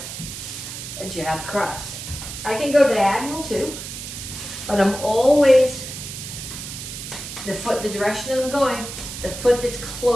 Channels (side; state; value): right; noise; hiss, 9 dB below the sound